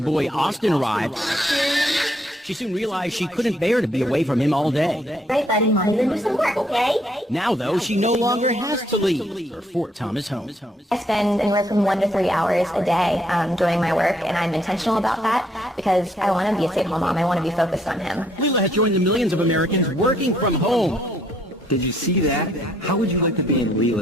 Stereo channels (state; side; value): normal; both; correlation 0.69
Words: boy Austin arrived. She soon realized she couldn't bear to be away from him all day. Right, buddy, Mommy, then do some work, okay? Now, though, she no longer has to leave her Fort Thomas home. I spend anywhere from 1 to 3 hours a day doing my work, and I'm intentional about that because I want to be a stay-at-home mom. I want to be focused on him. Leela has joined the millions of Americans working from home. Did you see that? How would you like to be in